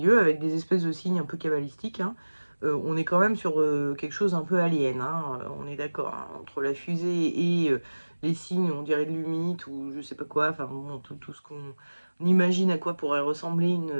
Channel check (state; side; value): inverted; both; correlation -1.00